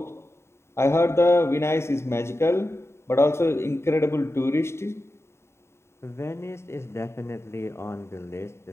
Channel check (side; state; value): right; late; 0.13 ms